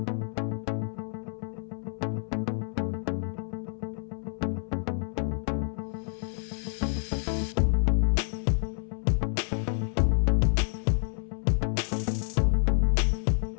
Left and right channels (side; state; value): right; silent; 59 dB below the other